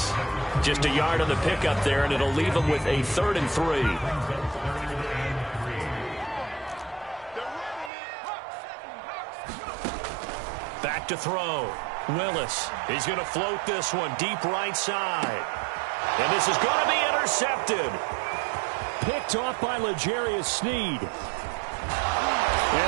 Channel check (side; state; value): left; drops out; at 7.9 s